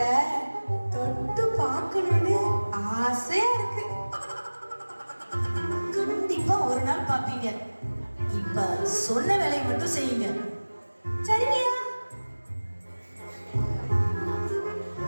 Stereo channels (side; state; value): both; inverted; correlation -1.00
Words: தொட்டு பார்க்கணும்னு ஆசையா இருக்கு. கண்டிப்பா ஒரு நாள் பாப்பீங்க. இப்ப சொன்ன வேலையை மட்டும் செய்யுங்க. சரியா?